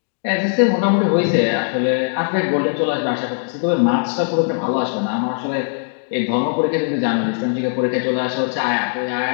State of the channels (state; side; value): silent; right; digital silence